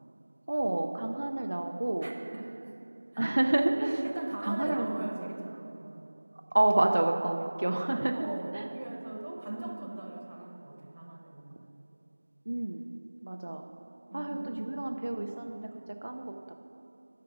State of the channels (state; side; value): inverted; both; correlation -1.00